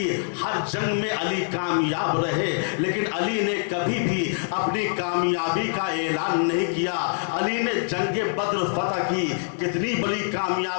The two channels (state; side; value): silent; right; digital silence